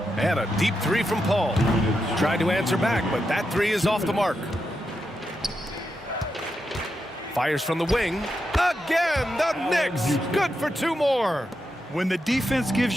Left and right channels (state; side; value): normal; both; correlation 0.86